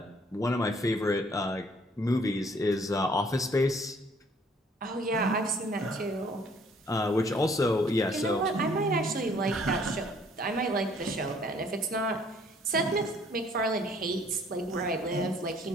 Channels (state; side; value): normal; both; correlation 0.60